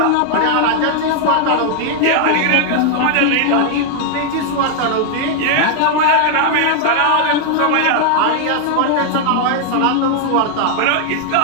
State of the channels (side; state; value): both; different; correlation 0.00